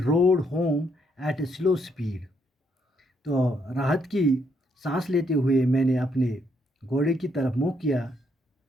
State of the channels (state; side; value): normal; both; correlation 0.74